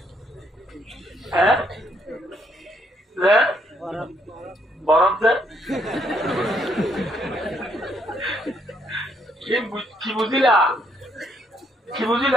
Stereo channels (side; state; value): both; normal; correlation 0.72